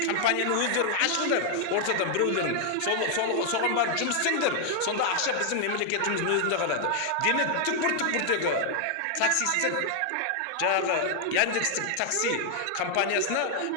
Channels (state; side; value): different; both; correlation 0.00